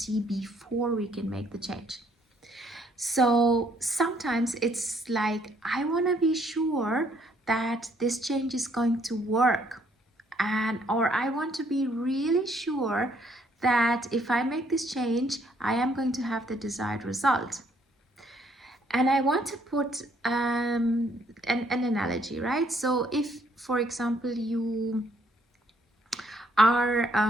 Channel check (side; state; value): both; normal; correlation 0.67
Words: before we can make the change. So sometimes it's like, I want to be sure that this change is going to work, or I want to be really sure that if I make this change, I am going to have the desired result. And I want to put an analogy, right? So if, for example, you are